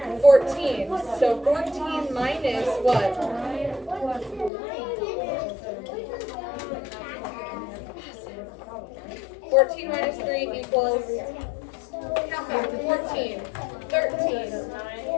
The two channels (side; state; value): right; drops out; at 4.5 s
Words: 14. So 14 minus what? 14 minus 3 equals, count back, 14, 13,